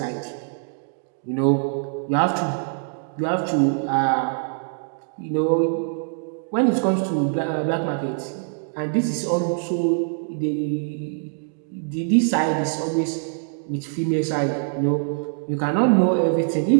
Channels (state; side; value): silent; left; digital silence